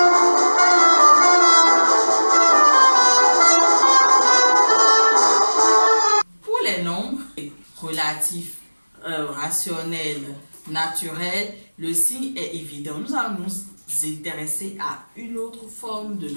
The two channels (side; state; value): both; inverted; correlation -1.00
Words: Relatif, rationnel, naturel, le signe est évident. Nous allons nous intéresser à une autre forme de